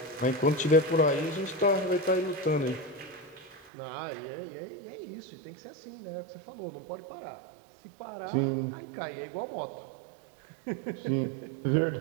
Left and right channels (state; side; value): drops out; left; at 3.7 s